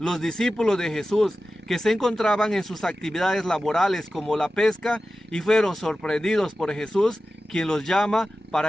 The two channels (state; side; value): normal; both; correlation 0.94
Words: discípulos de Jesús, que se encontraban en sus actividades laborales como la pesca y fueron sorprendidos por Jesús, quien los llama